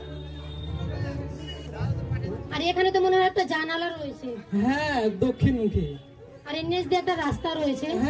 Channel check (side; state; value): both; identical; correlation 1.00